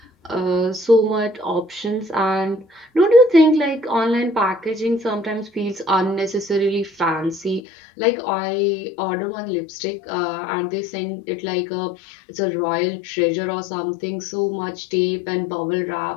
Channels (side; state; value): right; drops out; at 7.6 s